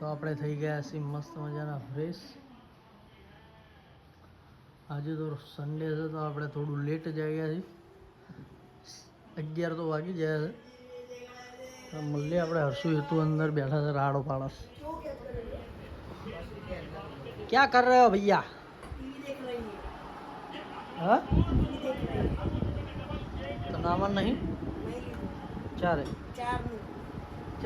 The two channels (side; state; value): both; identical; correlation 1.00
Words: આપણે થઈ ગયા છીએ મસ્ત મજાના ફ્રેશ. આજે તો સન્ડે છે તો આપણે થોડું લેટ જ આવ્યા છીએ. 11 તો વાગી ગયા છે. મળીએ આપણે હર્ષુ હેતુ અંદર બેઠા છે રાડો પાડસ. ક્યાં કર રહે હો ભૈયા? હા તો નાવા નહીં ચારે